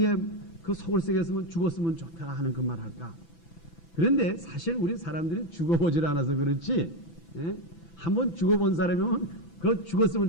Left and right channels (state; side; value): late; right; 6.0 ms